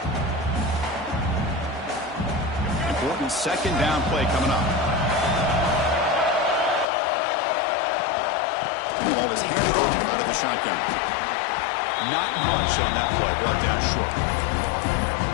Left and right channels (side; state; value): right; drops out; at 6.9 s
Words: Important second down play coming up. The ball is handed over out of the shotgun. Not much on that play. Brought down short.